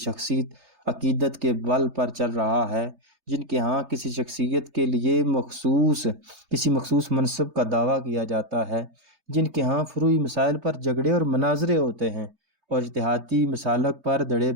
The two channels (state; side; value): late; left; 3.2 ms